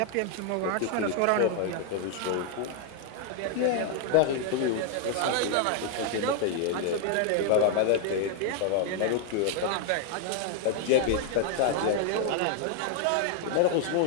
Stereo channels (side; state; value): both; different; correlation 0.00